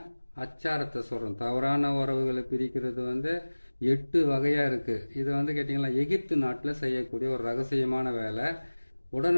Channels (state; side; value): inverted; both; correlation -1.00